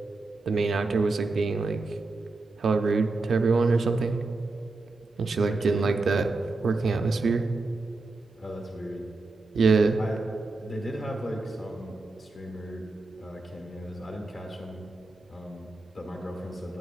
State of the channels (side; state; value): left; quieter; 3.4 dB